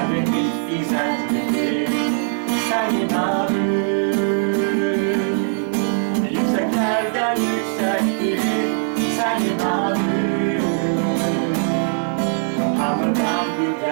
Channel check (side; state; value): left; silent; digital silence